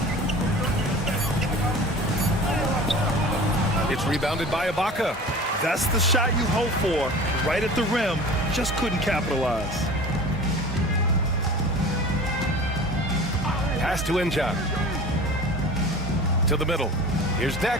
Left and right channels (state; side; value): normal; both; correlation 0.39